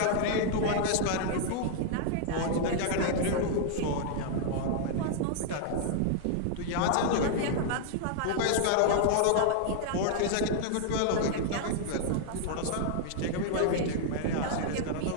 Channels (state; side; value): different; both; correlation -0.01